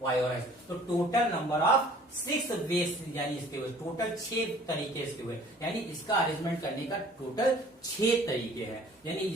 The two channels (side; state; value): both; normal; correlation 0.52